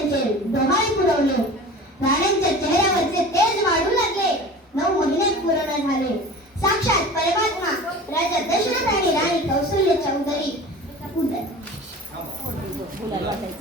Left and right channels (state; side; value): normal; both; correlation 0.38